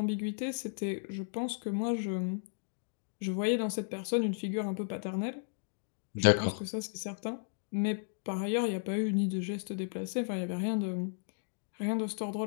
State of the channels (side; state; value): right; silent; digital silence